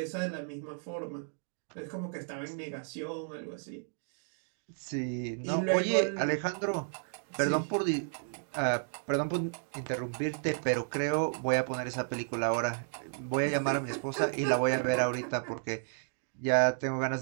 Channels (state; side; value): silent; left; 56 dB below the other